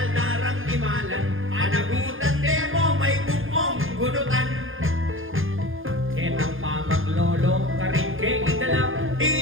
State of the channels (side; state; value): left; late; 0.59 ms